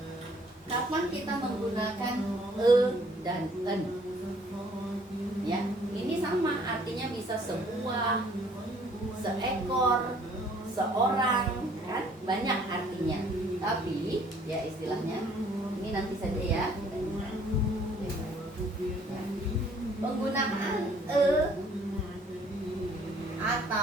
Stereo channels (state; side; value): normal; both; correlation 0.60